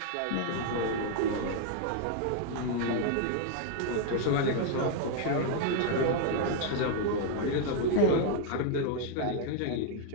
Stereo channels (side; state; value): both; different; correlation 0.00